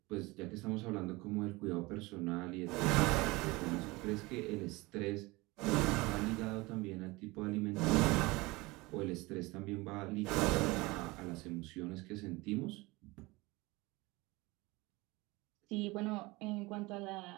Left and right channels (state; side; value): quieter; left; 22.8 dB